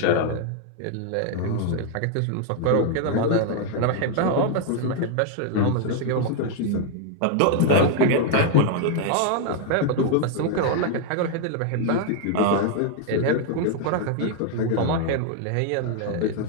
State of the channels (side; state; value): both; different; correlation 0.00